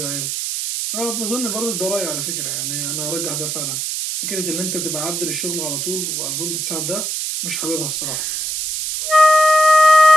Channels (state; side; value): noise; right; hiss, 2 dB below the sound